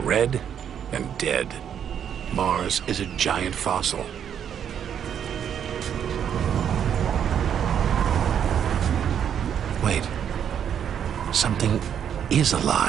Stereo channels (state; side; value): quieter; left; 8.7 dB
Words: and dead. Mars is a giant fossil. Wait, something is